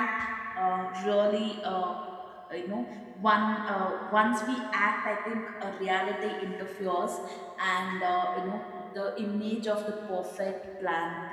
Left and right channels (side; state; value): both; identical; correlation 1.00